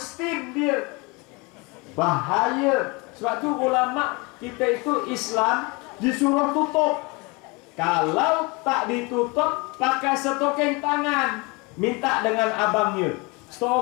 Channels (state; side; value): quieter; right; 27.2 dB